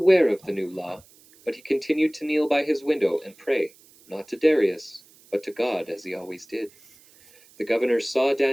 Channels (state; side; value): noise; right; hiss, 27 dB below the sound